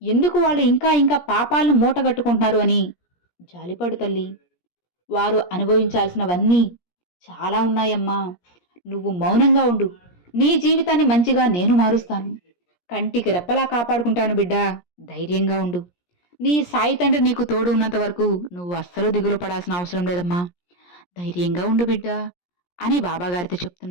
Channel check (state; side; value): late; right; 17 ms